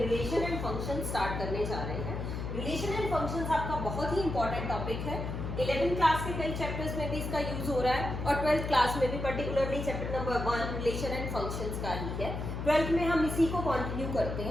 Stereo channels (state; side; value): noise; left; hum, 5 dB below the sound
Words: रिलेशन एंड फंक्शन स्टार्ट करने जा रहे हैं. रिलेशन एंड फंक्शंस आपका बहुत ही इंपॉर्टेंट टॉपिक है. 11th क्लास के कई चैप्टर्स में भी इसका यूज हो रहा है और 12th क्लास में भी particularly chapter number 1 relation and functions का ही है. 12th में हम इसी को कंटिन्यू करते